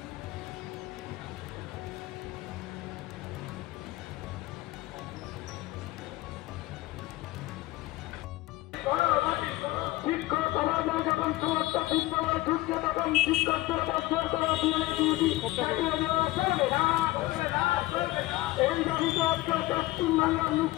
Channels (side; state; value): right; quieter; 18.4 dB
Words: শিক্ষক সমাজ যখন সমস্ত বিদ্যালয় ঢুকছে তখন শিক্ষকদের বছর করা এই দাবিতে আজকে পশ্চিমবাংলার